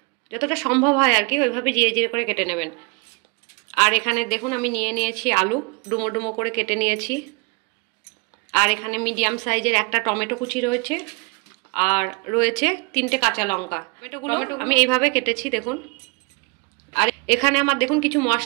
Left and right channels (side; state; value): left; quieter; 30.9 dB